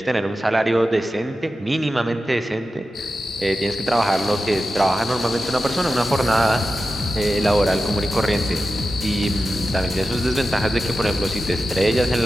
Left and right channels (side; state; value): both; normal; correlation 0.92